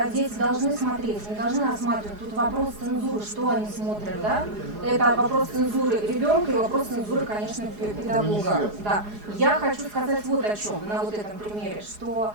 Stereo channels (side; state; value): left; late; 4.8 ms